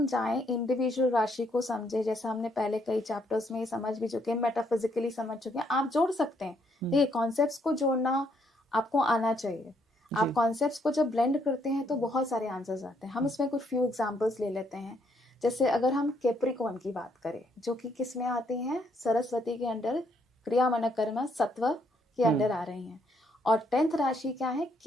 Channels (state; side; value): normal; both; correlation 0.71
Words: जाएं इंडिविजुअल राशि को समझे, जैसे हमने पहले कई चैप्टर्स में समझ भी चुके हैं, मेटाफिजिकली समझ चुके हैं, आप जोड़ सकते हैं। देखिए, कॉन्सेप्ट्स को जोड़ना आपको आना चाहिए। आप कॉन्सेप्ट्स को जब ब्लेंड करते हैं तो बहुत सारे आंसर्स आते हैं। हम इसमें कुछ फ्यू एग्जांपल्स ले लेते हैं। जैसे अगर हम कैप्रिकॉर्न की बात करें, जो कि किस में आती हैं? सरस्वती के अंडर, क्रिया मन कर्म सत्व के अंडर आ रही हैं। और 10th राशि क्या है?